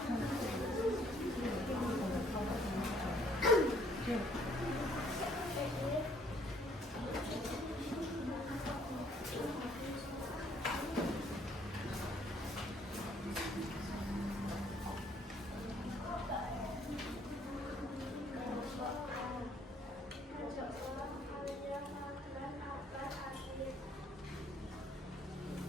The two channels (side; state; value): both; normal; correlation 0.64